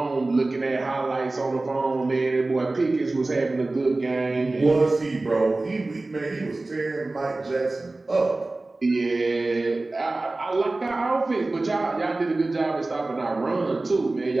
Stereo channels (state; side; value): quieter; left; 3.1 dB